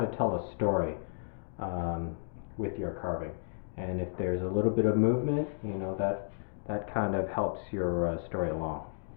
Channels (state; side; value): silent; right; digital silence